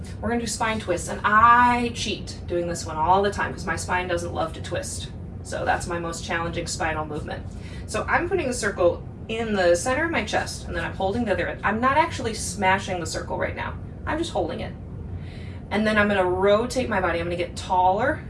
we're gonna do spine twists, and I cheat doing this one all the time because my spine doesn't love to twist. So that's my most challenging spinal movement. So I'm putting the circle in the center of my chest, and then I'm holding the other end. I'm not actually smashing the circle right now. I'm just holding it. And then I'm gonna rotate my body. I'm gonna get taller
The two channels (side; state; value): both; identical; correlation 1.00